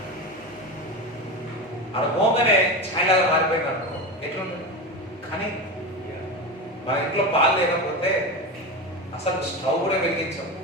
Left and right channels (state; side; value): normal; both; correlation 0.22